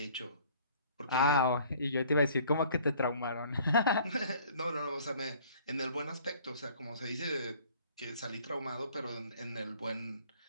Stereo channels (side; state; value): both; inverted; correlation -0.55